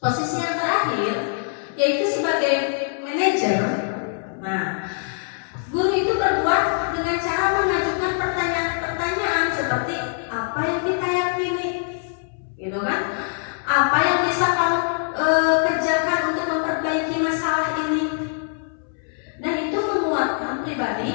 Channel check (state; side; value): silent; right; 63 dB below the other